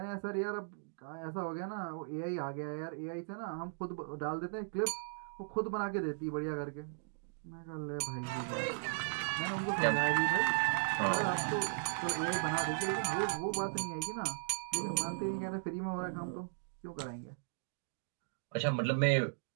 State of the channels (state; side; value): silent; left; digital silence